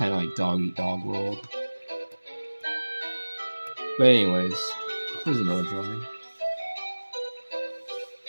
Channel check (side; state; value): both; inverted; correlation -1.00